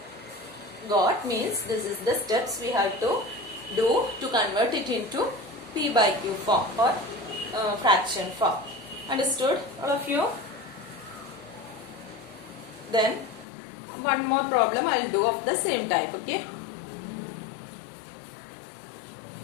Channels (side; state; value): right; drops out; at 13.5 s